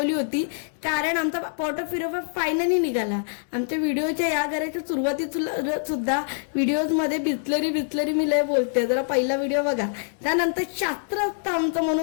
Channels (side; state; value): right; silent; digital silence